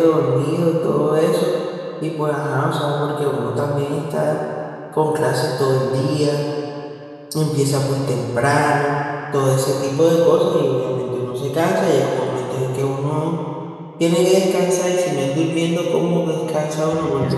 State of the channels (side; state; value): both; identical; correlation 1.00